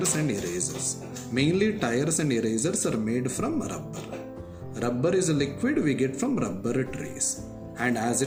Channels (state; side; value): identical; both; correlation 1.00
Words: and erasers. Mainly tires and erasers are made from rubber. Rubber is a liquid we get from rubber trees. And as